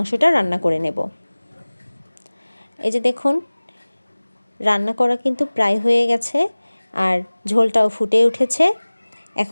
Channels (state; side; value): inverted; both; correlation -1.00